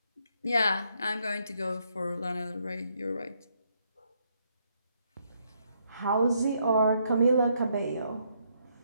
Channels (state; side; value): inverted; both; correlation -0.74